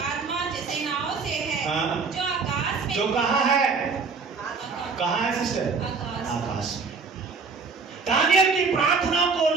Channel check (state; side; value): quieter; left; 4.9 dB